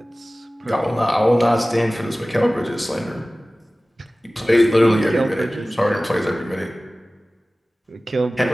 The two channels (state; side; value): normal; both; correlation 0.97